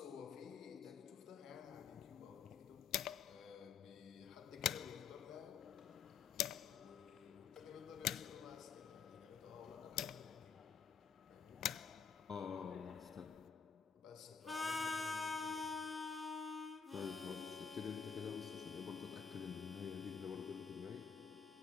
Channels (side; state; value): right; quieter; 6.5 dB